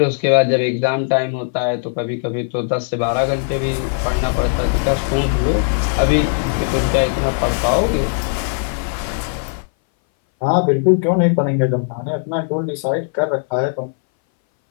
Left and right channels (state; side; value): silent; right; 62 dB below the other